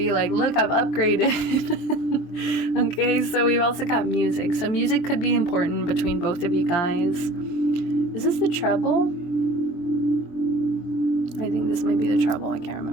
like, look, I've upgraded. Okay, so we've also got music. So music could be important between both of you guys. Is this the treble? I think this might be the treble. I can't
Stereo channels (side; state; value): right; late; 23 ms